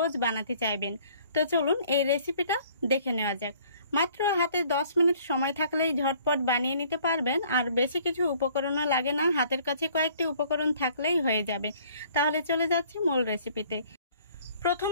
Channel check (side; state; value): both; inverted; correlation -0.57